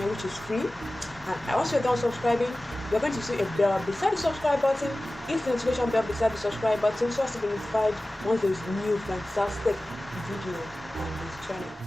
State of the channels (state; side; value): normal; both; correlation 0.97